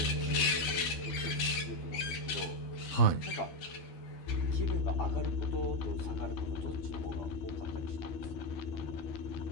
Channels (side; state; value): right; late; 12 ms